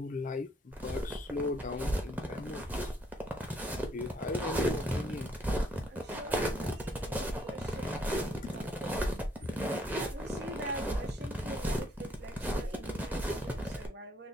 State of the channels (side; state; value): both; normal; correlation 0.69